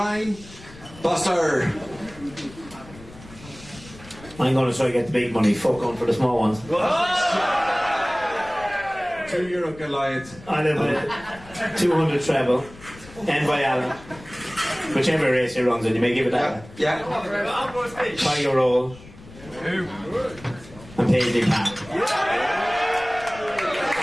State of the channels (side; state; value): left; noise; rumble, 19 dB below the sound